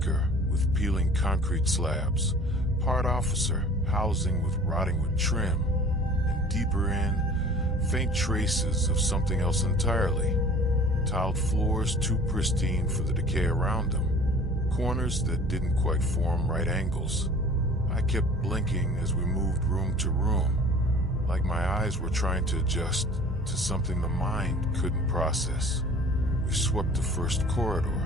with peeling concrete slabs, part officer housing with rotting wood trim, and deeper in, faint traces of something else entirely. Tiled floors too pristine for the decay around them. Corners that didn't quite form right angles. I kept blinking as we moved room to room, like my eyes were trying to adjust to something the mind couldn't process. We swept the first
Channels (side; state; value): both; normal; correlation 0.46